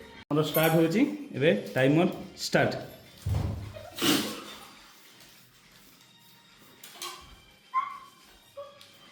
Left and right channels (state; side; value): identical; both; correlation 1.00